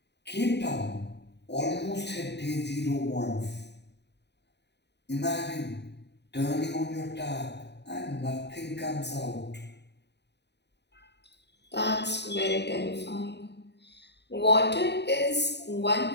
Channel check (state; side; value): late; right; 0.50 ms